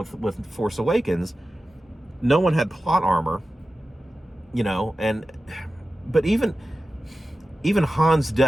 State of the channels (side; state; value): both; normal; correlation 0.94